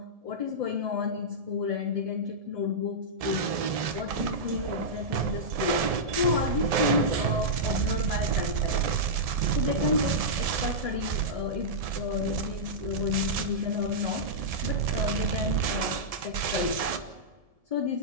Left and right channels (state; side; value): late; left; 1.7 ms